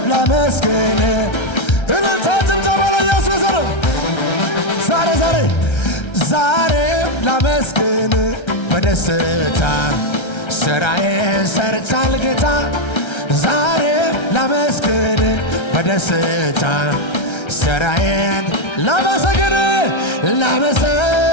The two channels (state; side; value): late; right; 1.3 ms